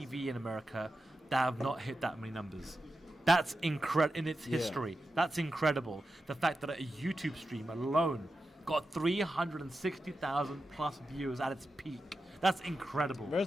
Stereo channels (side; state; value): both; normal; correlation 0.90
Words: in America that have not hit that many numbers. That's incredible in its history. That's incredible. The fact that a YouTube stream alone got 360,000 plus views at its peak. That's incredible.